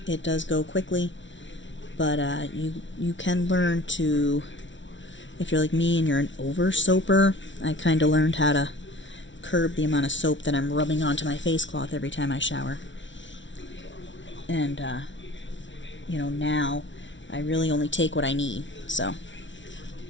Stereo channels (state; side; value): late; right; 0.55 ms